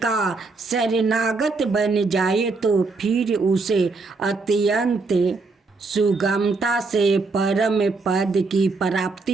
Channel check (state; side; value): quieter; left; 3.9 dB